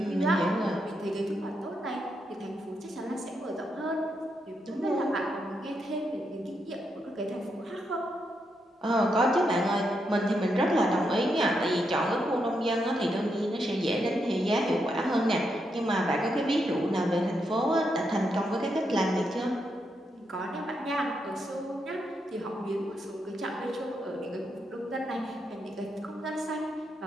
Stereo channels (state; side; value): normal; both; correlation 0.82